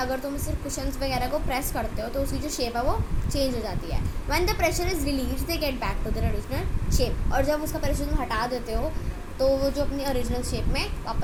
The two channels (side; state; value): both; identical; correlation 1.00